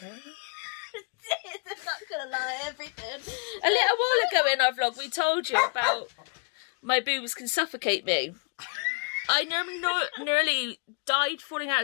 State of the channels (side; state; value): right; quieter; 34.6 dB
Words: I'm not gonna lie, everything. A little while ago in our vlog we told you about my boobs can suffocate me. I nearly died falling out